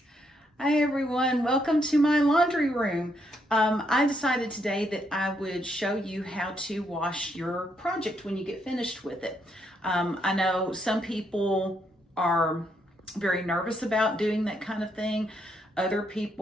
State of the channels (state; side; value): normal; both; correlation 0.75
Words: Hi everyone, welcome to my laundry room. I decided today that I would show you how to wash your project when you get finished with it. I know some people are very nervous about doing that kind of thing. Other